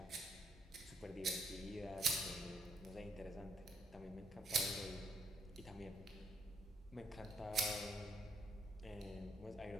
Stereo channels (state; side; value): normal; both; correlation 0.70